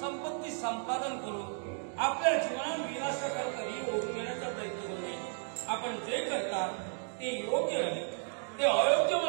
संपादन करून आपल्या जीवनात विनाशाकडे ओढून घेण्याचा प्रयत्न करू नये. आपण जे करता ते योग्य आहे, ते अयोग्य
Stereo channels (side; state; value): left; silent; 55 dB below the other